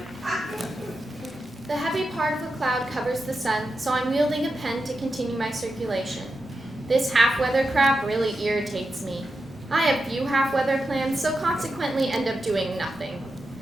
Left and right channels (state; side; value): normal; both; correlation 0.89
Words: The heavy part of the cloud covers the sun, so I'm wielding a pen to continue my circulation. This half-weather crap really irritates me. I have few half-weather plans, so consequently end up doing nothing.